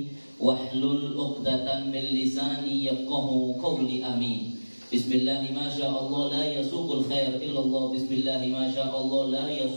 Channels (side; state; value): both; inverted; correlation -1.00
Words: wahlul 'uqdatam min lisani yafqahu qawli. Amin. Bismillah ma syaa Allah la yasuqul khair illallah. Bismillah ma syaa Allah la